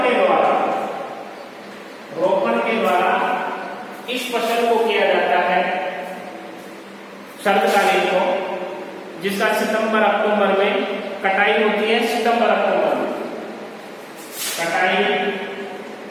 के द्वारा इस फसल को किया जाता है शरतकालीन को, जिसका सितंबर अक्टूबर में कटाई होती है। सितंबर अक्टूबर में कटाई,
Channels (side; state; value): both; identical; correlation 1.00